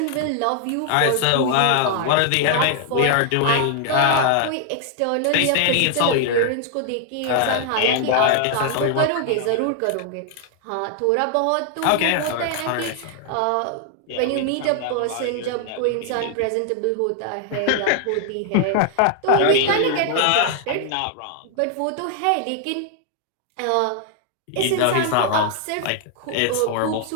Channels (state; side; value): different; both; correlation 0.00